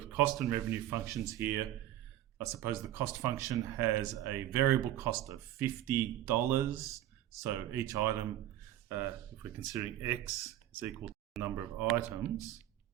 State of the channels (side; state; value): left; quieter; 13.0 dB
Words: cost and revenue functions here. I suppose the cost function has a variable cost of $50. So each item, if we're considering X is equal to the number of items,